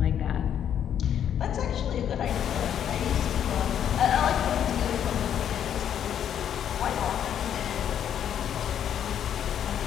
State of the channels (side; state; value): right; quieter; 9.4 dB